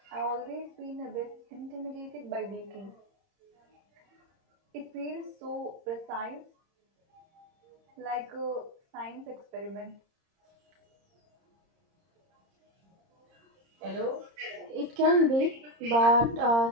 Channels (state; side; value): late; left; 30 ms